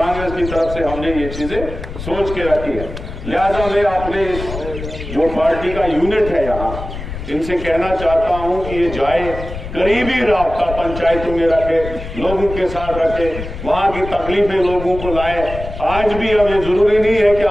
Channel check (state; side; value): noise; left; rumble, 9 dB below the sound